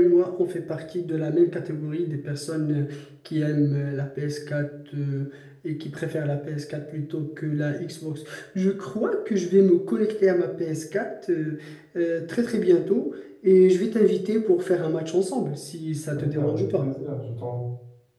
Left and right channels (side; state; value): both; identical; correlation 1.00